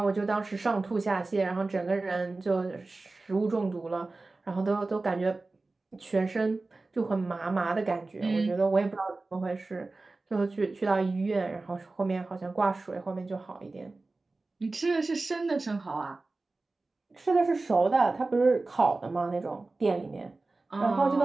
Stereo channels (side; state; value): left; quieter; 3.4 dB